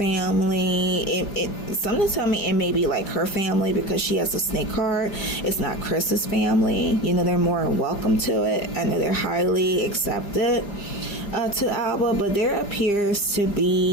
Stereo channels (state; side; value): late; right; 4.9 ms